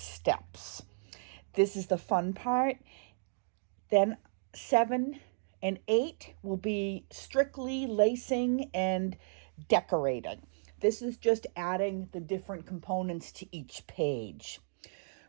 steps. This is the fun part. Then 7 and 8 will be strictly lacing and decorating. This is just adding the different components to each page.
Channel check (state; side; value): silent; left; digital silence